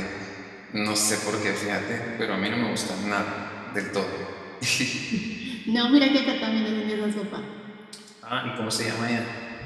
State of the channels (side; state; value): both; identical; correlation 1.00